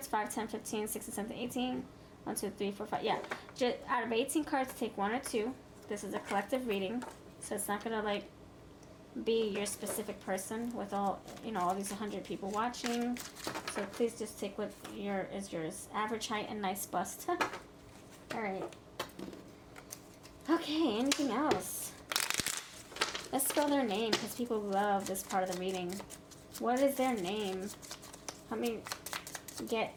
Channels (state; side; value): identical; both; correlation 1.00